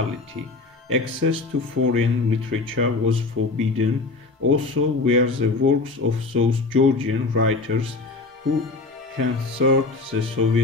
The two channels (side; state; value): right; quieter; 3.6 dB